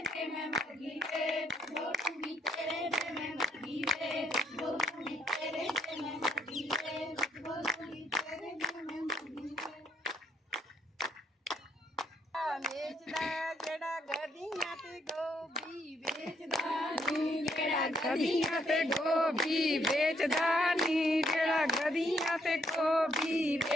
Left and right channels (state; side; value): normal; both; correlation 0.72